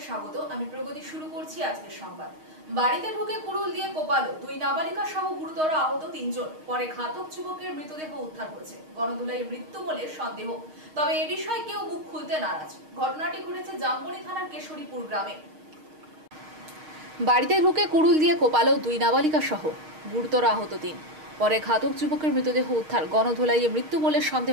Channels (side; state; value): left; late; 6.4 ms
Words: স্বাগত। আমি প্রগতি শুরু করছি আজকের সংবাদ। বাড়িতে ঢুকে কুড়ুল দিয়ে কোপালো দুই নাবালিকা সহ গুরুতর আহত তিনজন। পরে ঘাতক যুবকের মৃতদেহ উদ্ধার করেছে। গণধোলাই মৃত্যু বলে সন্দেহ, তবে এ বিষয়ে কেউ মুখ খুলতে নারাজ। ঘটনাটি ঘটেছে জামবনি থানার কেশরীপুর গ্রামে। বাড়িতে ঢুকে কুড়ুল দিয়ে কোপালো দুই নাবালিকা সহ গুরুতর আহত তিন। পরে ঘাতক যুবকের মৃতদেহ উদ্ধার। গণধোলাইয়ে মৃত্যু বলে